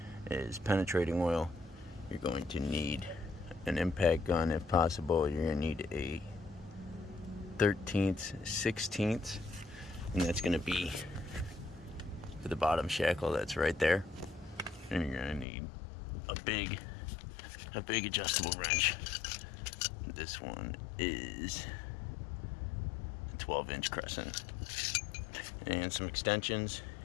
is penetrating oil. You're going to need an impact gun if possible. You're going to need a 13th, 16th. And that's going to be for the bottom shackle that's right there. And you're going to need a big adjustable wrench. This one is a 12-inch crescent. And some extensions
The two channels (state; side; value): drops out; right; at 15.5 s